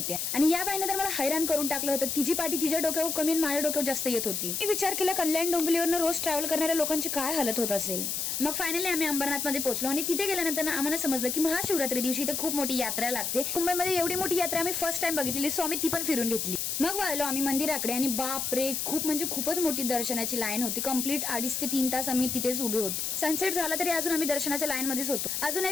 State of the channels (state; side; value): noise; left; hiss, 1 dB below the sound